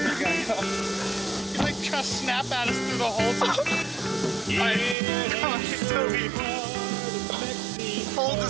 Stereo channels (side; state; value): left; drops out; at 5.0 s